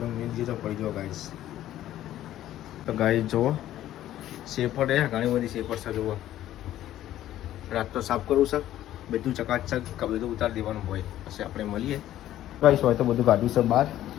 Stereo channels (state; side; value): quieter; right; 13.0 dB